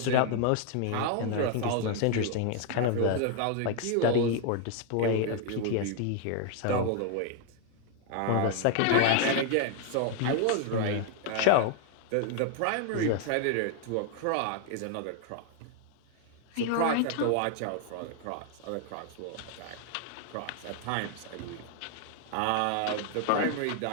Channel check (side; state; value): both; different; correlation 0.00